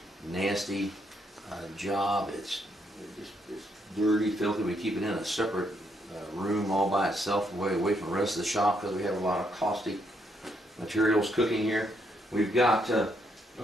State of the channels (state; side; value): normal; both; correlation 0.75